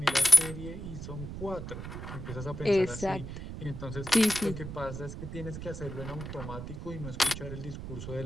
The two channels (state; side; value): noise; right; rumble, 9 dB below the sound